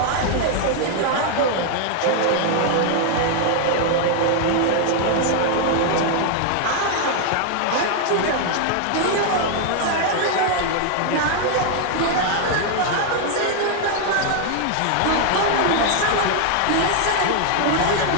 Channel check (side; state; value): both; different; correlation 0.00